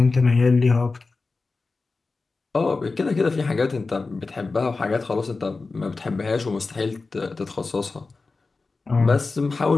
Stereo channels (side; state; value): right; quieter; 3.9 dB